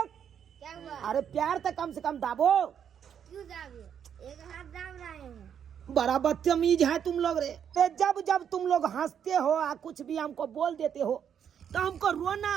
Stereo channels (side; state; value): left; quieter; 8.4 dB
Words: क्या हुआ? अरे प्यार तो कम से कम दाबो। क्यों दाबे? एक हाथ दाब रहे हैं। बड़ा बदतमीज है तुम लोग रे। जब जब तुम लोग हंसते हो या कुछ भी हमको बोल देते हो तो हमको रोना